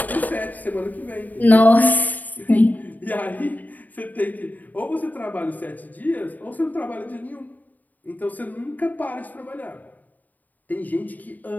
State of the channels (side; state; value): right; late; 0.081 ms